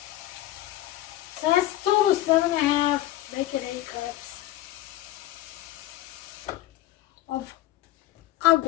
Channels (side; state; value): right; quieter; 15.0 dB